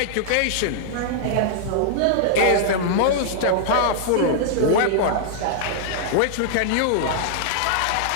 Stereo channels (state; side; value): different; both; correlation -0.01